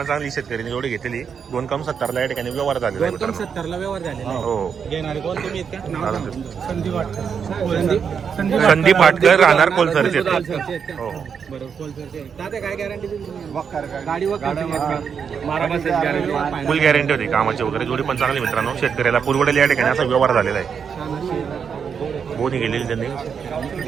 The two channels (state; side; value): quieter; left; 6.8 dB